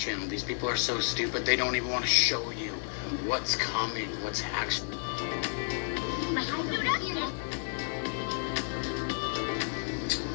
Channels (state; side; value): silent; right; digital silence